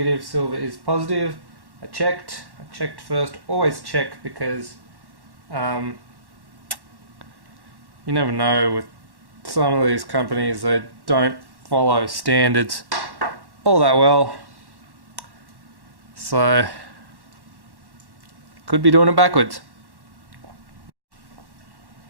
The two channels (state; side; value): late; left; 1.1 ms